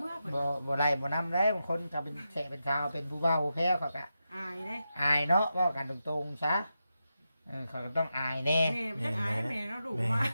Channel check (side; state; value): both; inverted; correlation -0.88